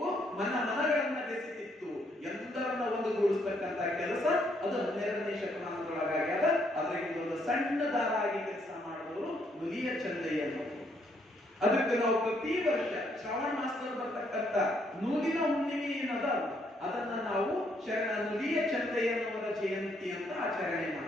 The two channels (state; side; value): normal; both; correlation 0.71